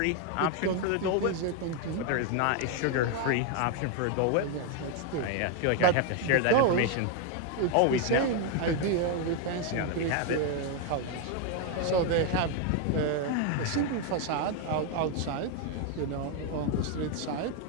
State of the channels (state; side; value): different; both; correlation 0.01